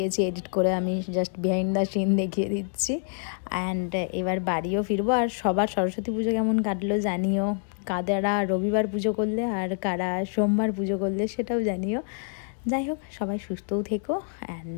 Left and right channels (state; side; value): silent; right; 60 dB below the other